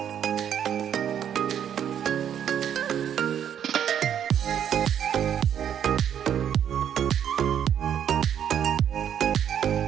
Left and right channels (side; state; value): left; quieter; 9.3 dB